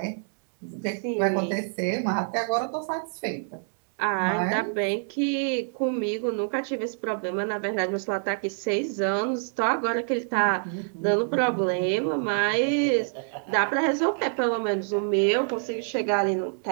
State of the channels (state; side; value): silent; left; 60 dB below the other